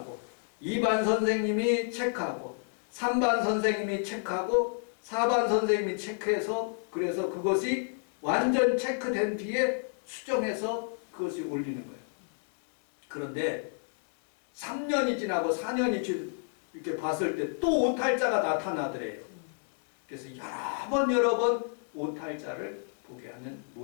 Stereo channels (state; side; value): silent; right; 57 dB below the other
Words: 2반 선생님이 체크하고 3반 선생님이 체크하고 4반 선생님이 체크해서, 그래서 그것이 완전 체크된 뒤에 수정해서 그것이 올리는 거예요. 그런데 3년이 지나고 4년이 이렇게 봤을 때 또 오탈자가 나타나더래요. 그래서 여러 번 오탈자를 보게 하는